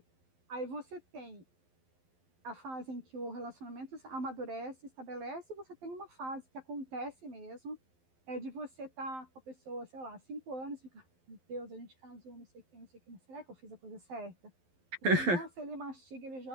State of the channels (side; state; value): left; late; 12 ms